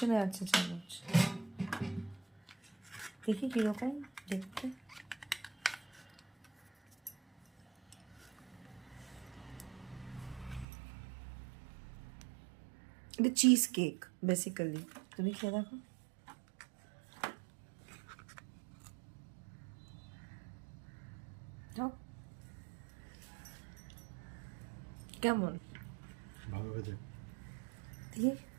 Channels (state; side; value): drops out; left; at 10.7 s